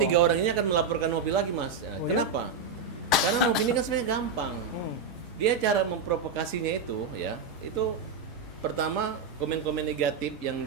3 orang ini akan melaporkan Nopi lagi, Mas. Oh, kenapa? Karena Nopi ini kan sebenarnya gampang. Dia cara memprovokasinya itu ya, itu pertama komen-komen negatif yang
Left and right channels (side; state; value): left; quieter; 4.8 dB